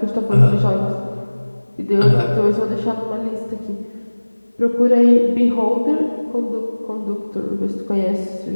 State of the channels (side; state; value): both; inverted; correlation -1.00